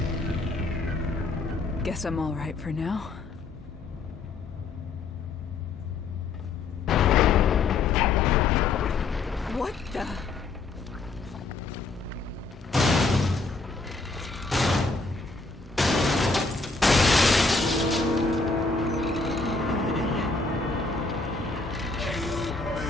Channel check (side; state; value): right; quieter; 3.9 dB